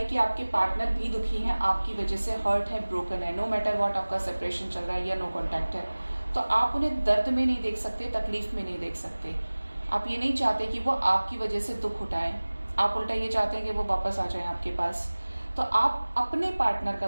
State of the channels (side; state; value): both; inverted; correlation -1.00